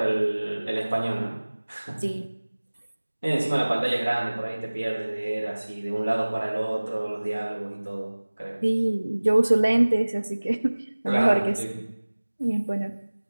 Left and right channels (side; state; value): both; inverted; correlation -1.00